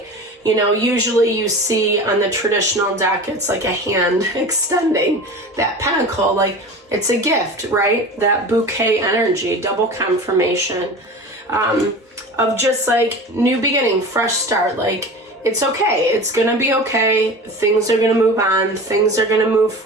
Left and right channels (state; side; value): normal; both; correlation 0.34